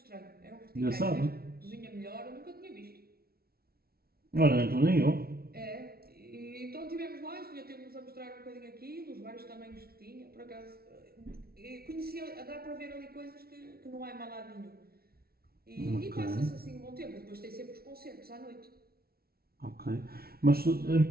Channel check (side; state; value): left; late; 0.44 ms